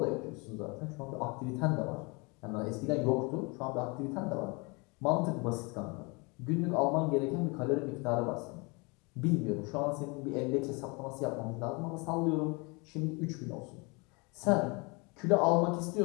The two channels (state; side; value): quieter; right; 29.2 dB